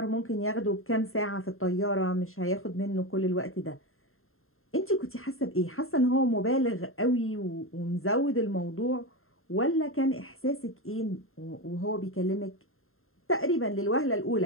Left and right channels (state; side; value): late; right; 0.61 ms